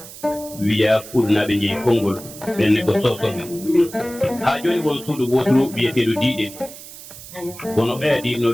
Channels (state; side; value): noise; right; hiss, 15 dB below the sound